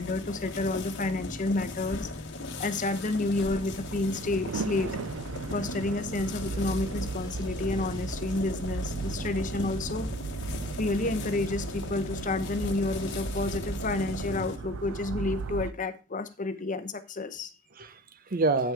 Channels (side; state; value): both; normal; correlation 0.48